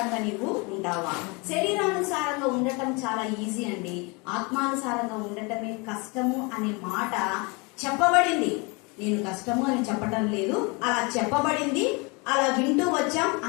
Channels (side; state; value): right; quieter; 29.1 dB